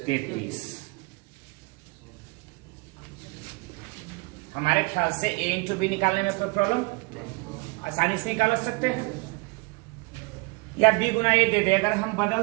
हमारे ख्याल से a इंटू बी निकालने में कोई प्रॉब्लम, आसानी से निकाल सकते हैं। या b गुना a दे दे, अगर हम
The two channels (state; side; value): quieter; left; 26.9 dB